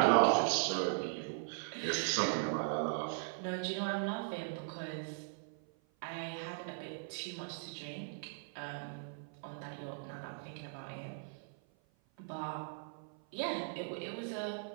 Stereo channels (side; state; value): left; silent; 52 dB below the other